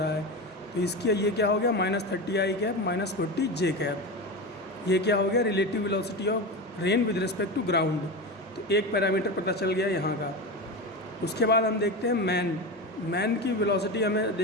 है। तो इसकी ये क्या हो गया -30 आई कैप -40 जे कैप। ये क्या हो गया relative velocity of rain with respect to ground. तो एक पैरामीटर पता चल गया यहाँ का। उसके बाद हम देखते हैं मैन की वेलोसिटी हमें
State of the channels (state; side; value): normal; both; correlation 0.22